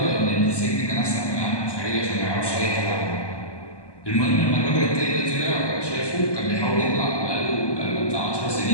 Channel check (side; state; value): right; late; 1.2 ms